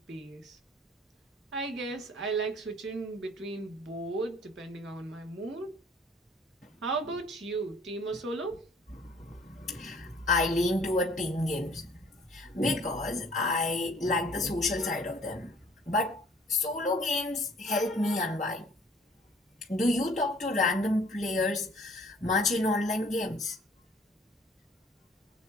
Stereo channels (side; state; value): both; normal; correlation 0.55